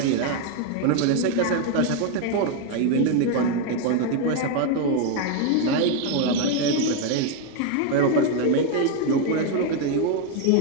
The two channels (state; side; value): different; both; correlation 0.01